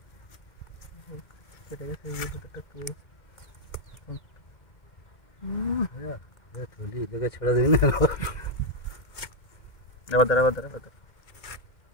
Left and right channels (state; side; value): late; right; 2.1 ms